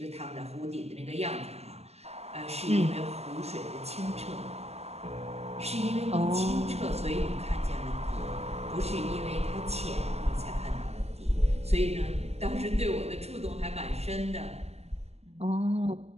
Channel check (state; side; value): late; left; 0.30 ms